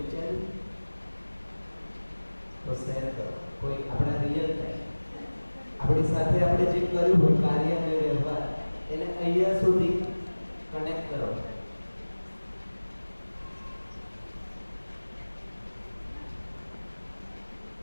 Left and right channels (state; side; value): inverted; both; correlation -1.00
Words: તો શેર કરો. કોઈ આપણા રિયલ ટાઈમ આપણી સાથે આપણે જે કર્યું હોય કાર્ય અને વ્યવહાર એને અહીંયા સુધી કનેક્ટ કરો.